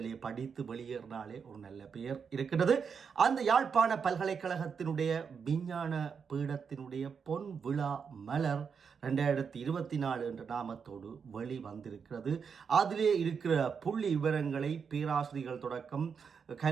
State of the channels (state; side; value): quieter; left; 6.3 dB